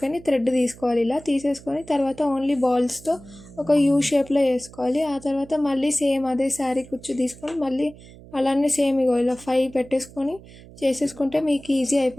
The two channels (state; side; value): noise; right; hum, 20 dB below the sound